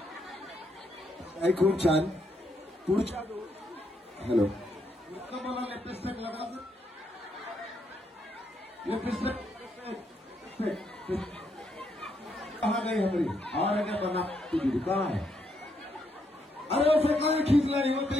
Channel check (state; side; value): normal; both; correlation 0.77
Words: आई खूप छान. पुढच्या हॅलो मला लिपस्टिक लगायचं. लिपस्टिक कहा गई हमारी और क्या बना तुझी कहा है. अरे उसे कहीं खींच लाई